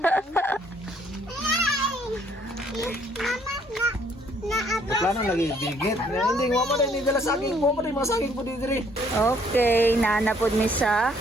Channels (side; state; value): both; normal; correlation 0.64